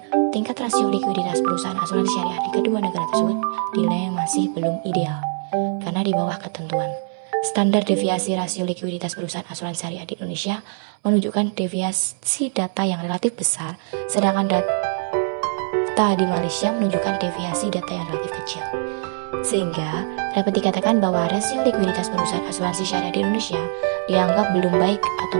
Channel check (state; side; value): silent; left; 60 dB below the other